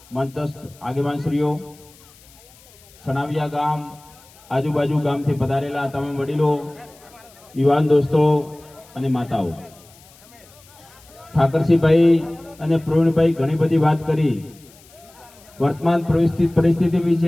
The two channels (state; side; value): noise; left; hiss, 26 dB below the sound